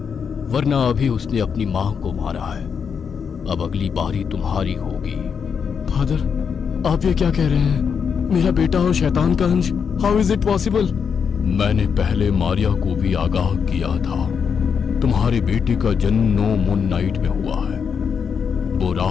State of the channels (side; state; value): right; quieter; 6.6 dB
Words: वरना अभी उसने अपनी मां को मारा है। अब अगली बारी तुम्हारी होगी। फादर, आप ये क्या कह रहे हैं? मेरा बेटा और शैतान का अंश, हाउ इज इट पॉसिबल? मैंने पहले मारिया को भी आगाह किया था। तुम्हारे बेटे का जन्म 9 मून नाइट में हुआ है। वो